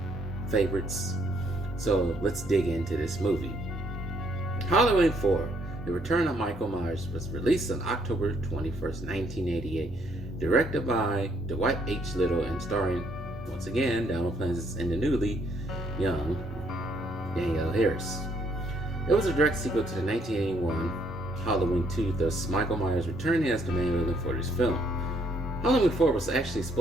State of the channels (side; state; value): both; normal; correlation 0.68